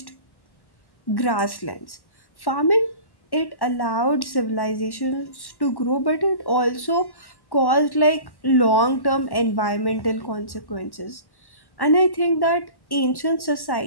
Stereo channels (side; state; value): right; late; 1.1 ms